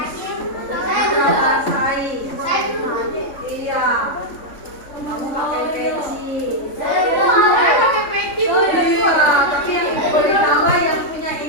Diprakarsai. Iya. Kamu pakai peci. Saya pakai peci. Iya, tapi yang boleh tambah yang punya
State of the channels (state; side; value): late; right; 3.5 ms